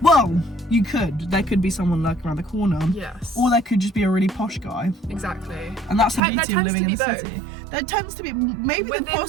Well, you could. There could be someone lurking around the corner. Yes. Or there could just be a really posh guy. Exactly. And that's the beauty of living in the both. city. There tends to be, maybe the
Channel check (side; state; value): left; drops out; at 6.2 s